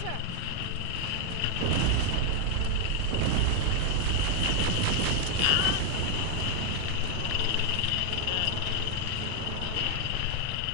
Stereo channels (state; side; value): different; both; correlation 0.01